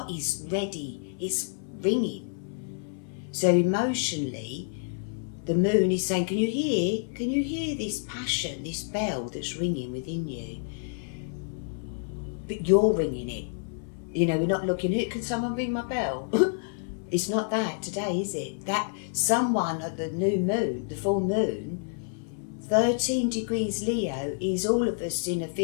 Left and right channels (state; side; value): silent; right; 59 dB below the other